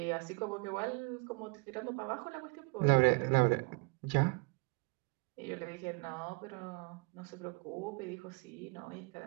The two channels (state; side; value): quieter; left; 32.0 dB